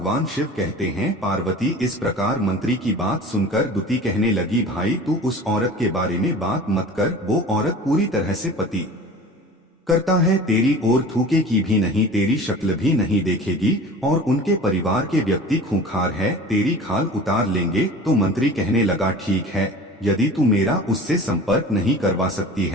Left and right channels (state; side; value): normal; both; correlation 0.39